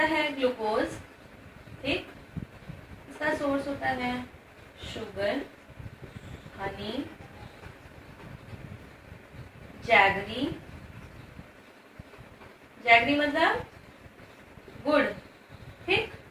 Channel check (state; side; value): identical; both; correlation 1.00